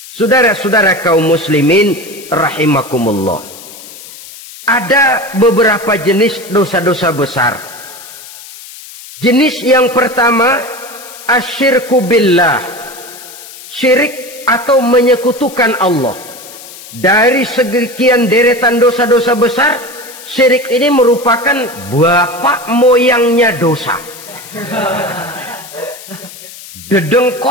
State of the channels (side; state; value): left; noise; hiss, 16 dB below the sound